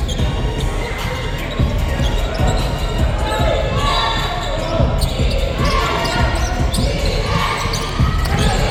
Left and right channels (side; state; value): both; identical; correlation 1.00